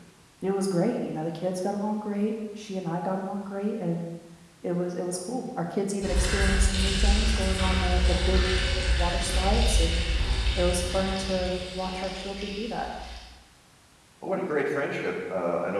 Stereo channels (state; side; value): identical; both; correlation 1.00